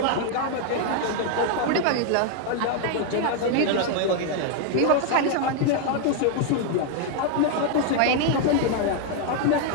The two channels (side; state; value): both; different; correlation 0.00